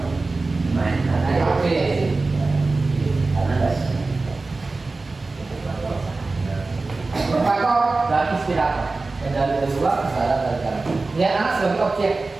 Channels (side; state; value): left; quieter; 3.5 dB